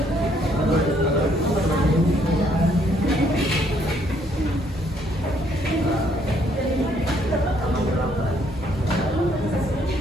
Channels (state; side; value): normal; both; correlation 0.68